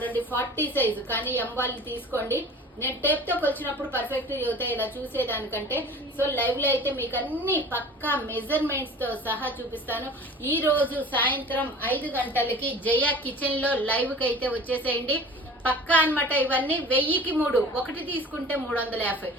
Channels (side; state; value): both; normal; correlation 0.42